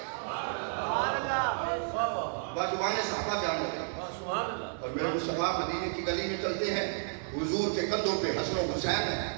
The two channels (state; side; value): silent; left; digital silence